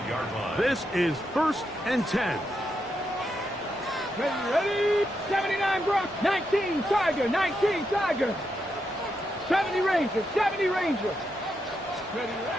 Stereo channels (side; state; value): both; normal; correlation 0.83